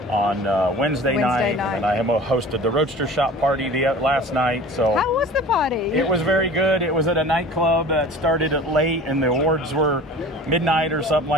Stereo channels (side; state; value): both; normal; correlation 0.41